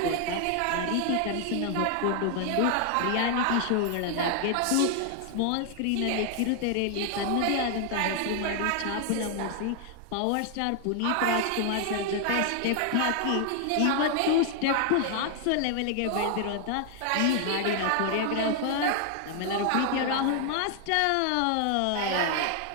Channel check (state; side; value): different; both; correlation 0.00